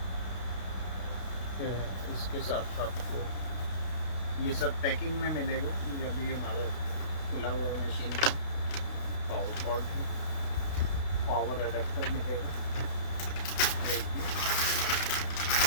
इसके साथ आपको ये सब पैकिंग में मिलेगा। ये अभी हमारा खुला हुआ मशीन है। पावर कॉर्ड है, पावर एडेप्टर मिलेगा,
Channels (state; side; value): late; right; 32 ms